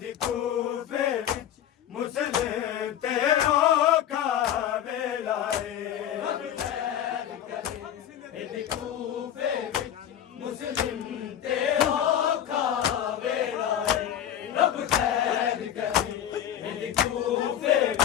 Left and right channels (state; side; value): quieter; right; 10.6 dB